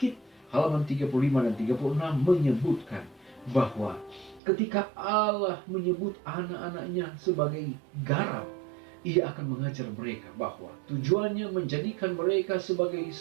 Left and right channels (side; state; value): left; drops out; at 4.4 s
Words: halaman 35 dan 36 menyebutkan bahwa ketika Allah menyebut anak-anaknya sebagai garam, Ia akan mengajar mereka bahwa tujuannya menjadikan mereka sebagai